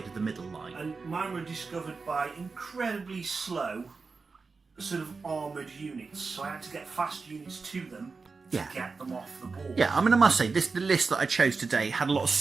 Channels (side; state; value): left; quieter; 4.5 dB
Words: of the middle line. And mine were discovered by incredibly slow, sort of armoured units. So I had to get fast units to them to get them off the board. Yeah, I mean I must say the list that I chose today had a lot of